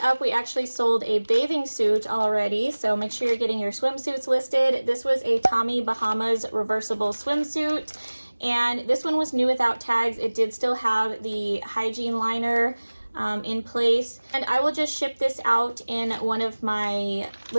up, we actually sold a bathing suit already, so make sure you're getting your swimsuits listed. This was a Tommy Bahamas reversible swimsuit, and this one was new without tags. It did still have the hygiene liner in place, and I will just ship this out in one of my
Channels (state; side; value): inverted; both; correlation -1.00